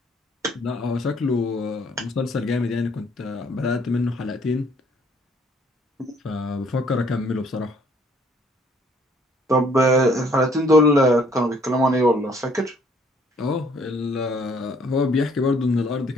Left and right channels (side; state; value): both; normal; correlation 0.62